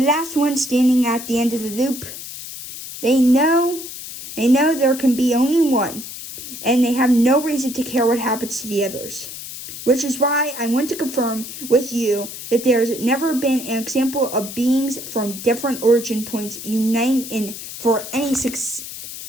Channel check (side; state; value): left; noise; hiss, 11 dB below the sound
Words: one standing at the end of the loop, they know They know there can be only one, and they have no reason to care what happens to the others. Which is why I want to confirm with you that there's never been an example of beings from different origin points uniting for any